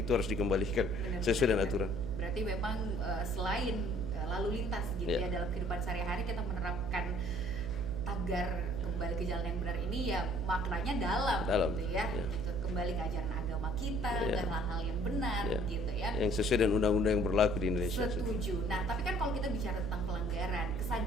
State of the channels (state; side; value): noise; right; hum, 6 dB below the sound